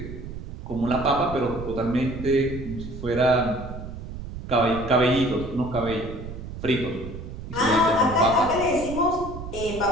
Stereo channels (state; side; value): noise; right; rumble, 10 dB below the sound